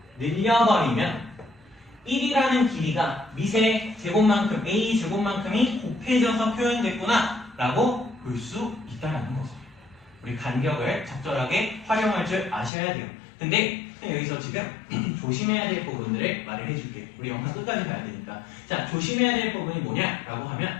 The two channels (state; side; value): drops out; right; at 12.7 s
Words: 늘려버리면 1이라는 길이가 밑의 제곱만큼 a 제곱만큼이 곱해져서 표현됐구나 라고 볼 수 있다는 거죠. 우리 간격을 적절하게 활용할 줄 아셔야 돼요. 근데 여기서 지금 조심해야 될 부분들을 말을 해줄게요. 우리 영상 끝까지 봐야 되니까. 자, 조심해야 될 부분이 뭐냐라고